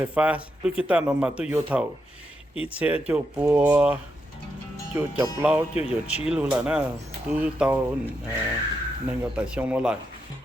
pha lúc guitar nó mà tôi vô thầu ít xe chỗ bùa chỗ chọc lau chỗ vô chi luôn là nó tôi tàu nên có tài xong nó lại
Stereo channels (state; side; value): normal; both; correlation 0.83